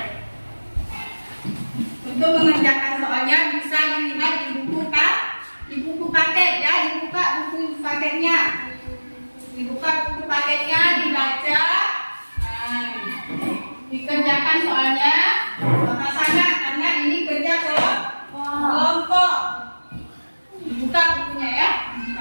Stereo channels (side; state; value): both; inverted; correlation -1.00